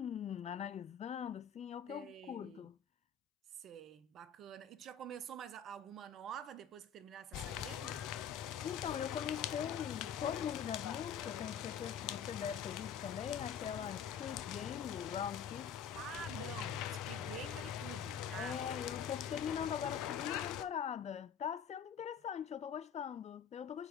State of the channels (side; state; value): right; quieter; 7.3 dB